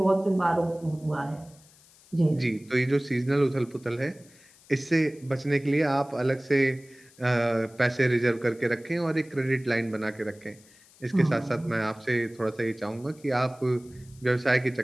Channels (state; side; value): noise; left; hiss, 27 dB below the sound